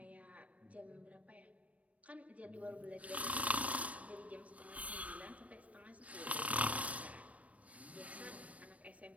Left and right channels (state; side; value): late; left; 0.066 ms